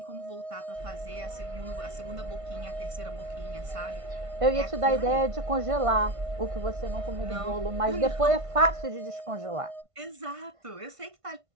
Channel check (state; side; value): late; left; 1.5 ms